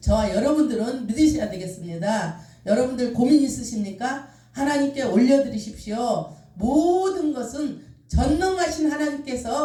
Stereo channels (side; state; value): both; identical; correlation 1.00